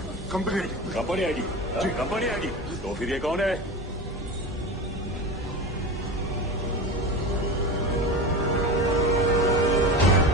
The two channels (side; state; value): both; normal; correlation 0.27